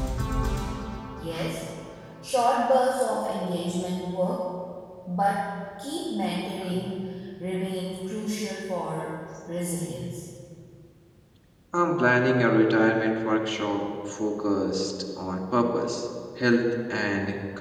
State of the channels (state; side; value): identical; both; correlation 1.00